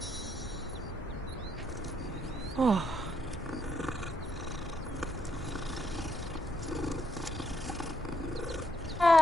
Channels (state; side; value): normal; both; correlation 0.77